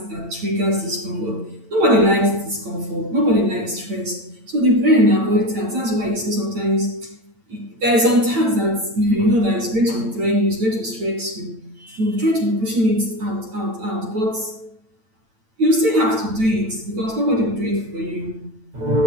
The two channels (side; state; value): left; late; 8.9 ms